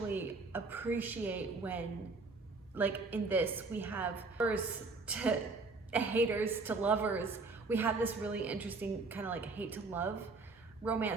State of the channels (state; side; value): quieter; left; 3.7 dB